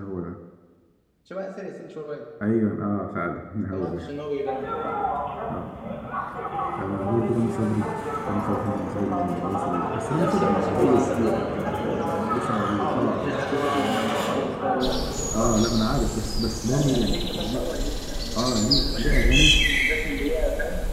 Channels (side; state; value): both; identical; correlation 1.00